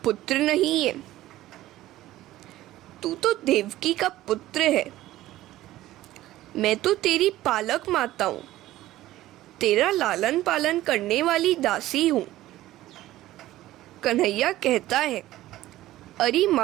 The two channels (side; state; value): left; quieter; 15.4 dB